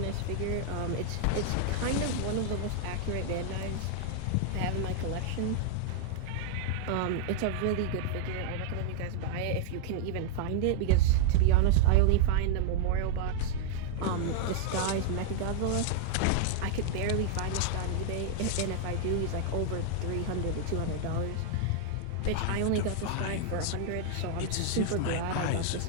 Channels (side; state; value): both; different; correlation 0.00